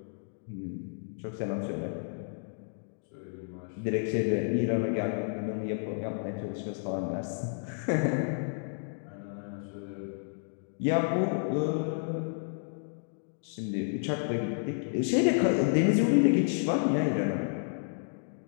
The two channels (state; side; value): silent; right; digital silence